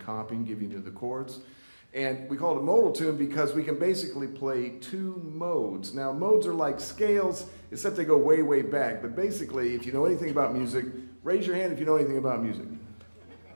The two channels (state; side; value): inverted; both; correlation -1.00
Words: giving you the chords. And we call it a modal tune because we can basically play two modes. Now, modes are like scales, except they go way, way back. But basically, if you know anything about music, raise your hand if you know anything about music.